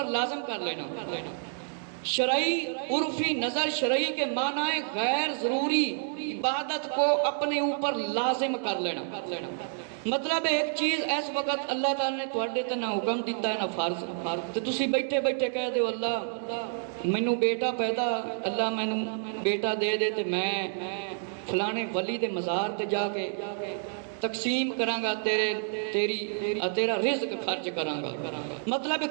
لازم کر لینا، شرعی عرفی نظر شرعی کے معنی غیر ضروری عبادت کو اپنے اوپر لازم کر لینا۔ مطلب ایک چیز اس وقت اللہ تعالی نے تواڈے تے نہ حکم دیتا ہے نہ فرض، تے تسی بیٹھے بیٹھے کہہ دیو اللہ مینوں بیٹا پیدا، اللہ مینوں بیٹا دے دے تے میں فلانے ولی دے مزار تے جا کے تقسیم کراں گا، تیرا رزق خرچ کراں گا۔ مطلب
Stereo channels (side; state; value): left; silent; digital silence